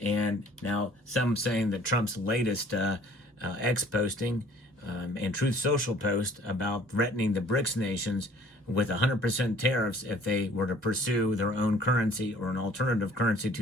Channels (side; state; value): both; normal; correlation 0.54